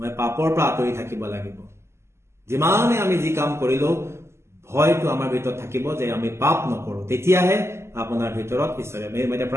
পাপৰ পৰা আঁতৰি থাকিব লাগিব যিমানে আমি যি কাম কৰিলো ভয়টো আমাৰ ভিতৰত থাকিব যে আমি পাপ নকৰো তেতিয়াহে আপোনাৰ ভিতৰত ঈশ্বৰে মই এতিয়া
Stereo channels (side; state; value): left; late; 0.13 ms